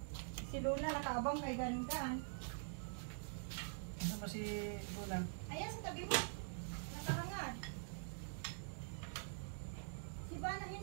Si Luna nakaabang kay Gangan. Ano ba si Luna? Ayan sa tabi mo. Nakahangad. Si Bana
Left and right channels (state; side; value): silent; left; digital silence